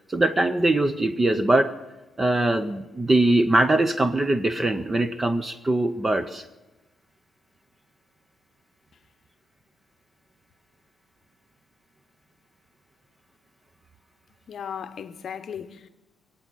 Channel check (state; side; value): normal; both; correlation 0.90